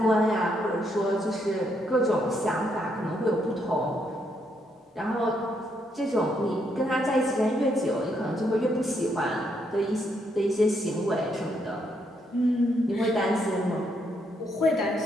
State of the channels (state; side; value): normal; both; correlation 0.75